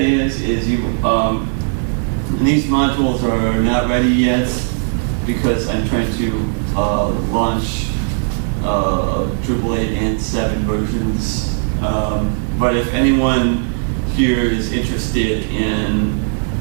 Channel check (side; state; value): left; silent; 61 dB below the other